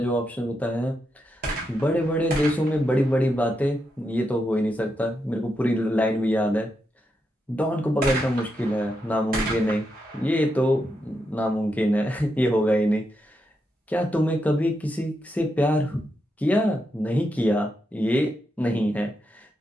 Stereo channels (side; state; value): both; normal; correlation 0.84